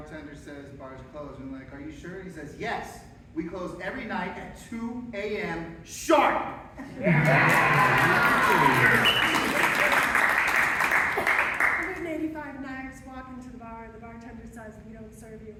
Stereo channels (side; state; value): both; identical; correlation 1.00